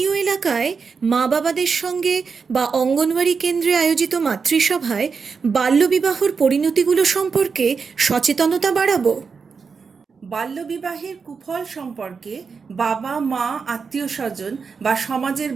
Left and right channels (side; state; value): left; quieter; 5.4 dB